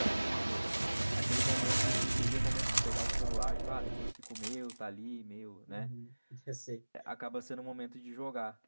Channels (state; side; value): inverted; both; correlation -1.00